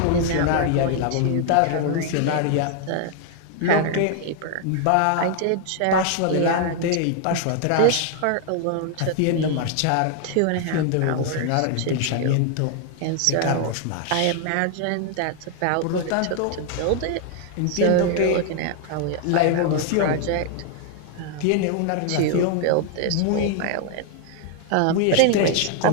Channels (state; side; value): different; both; correlation 0.00